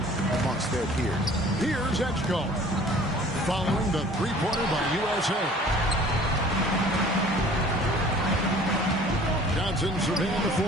amongst their peers. Here's Edgecombe, following the three-pointer by USA. Johnson surveying the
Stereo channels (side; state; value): both; normal; correlation 0.50